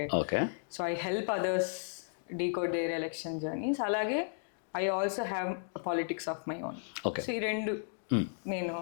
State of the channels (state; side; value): silent; right; digital silence